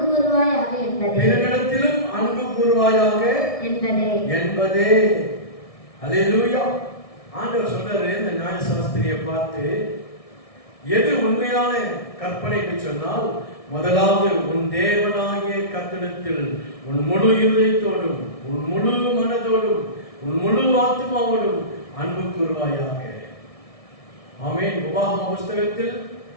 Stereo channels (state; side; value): late; right; 1.6 ms